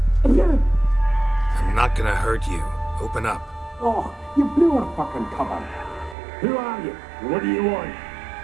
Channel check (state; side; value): drops out; left; at 6.2 s